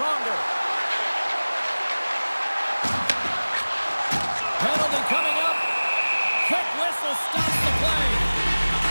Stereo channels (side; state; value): both; inverted; correlation -1.00